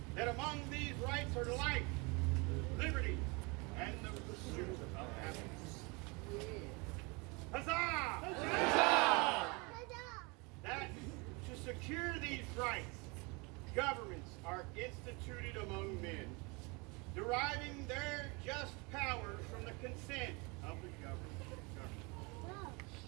that among these rights are life, liberty, and the pursuit of happiness. Huzzah! Huzzah! That to secure these rights, governments are instituted among men, deriving their just powers from the consent of the government.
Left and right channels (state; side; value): quieter; left; 28.5 dB